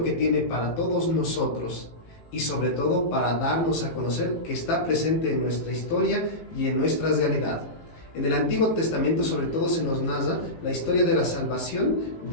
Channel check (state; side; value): late; right; 18 ms